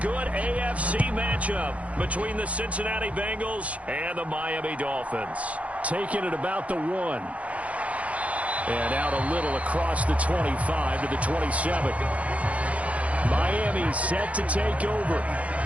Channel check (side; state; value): left; late; 0.065 ms